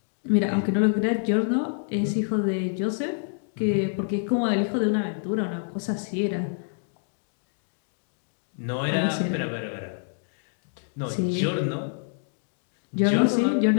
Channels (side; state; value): right; silent; digital silence